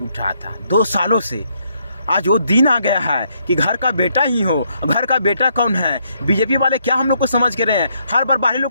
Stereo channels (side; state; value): both; inverted; correlation -0.73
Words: उठा था 2 सालों से। आज वो दिन आ गया है कि घर का बेटा ही हो। घर का बेटा कौन है? बीजेपी वाले क्या हम लोग को समझ के रहे हैं? हर बार बाहरी लोग